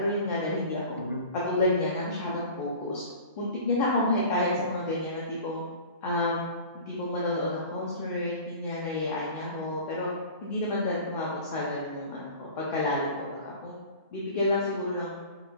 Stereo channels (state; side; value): inverted; both; correlation -0.40